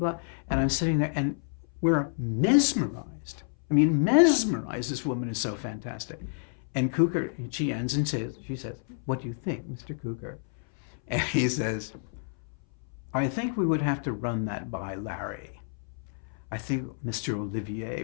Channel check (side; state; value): right; silent; 58 dB below the other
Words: And I'm sitting there, and we're mesmerized. I mean, mesmerized. This woman is so fantastic. And Cukor, she ends and she says, what do you think, Mr. Cukor? And he says, I think we would have to run that by Larry. I think Mr. Olivier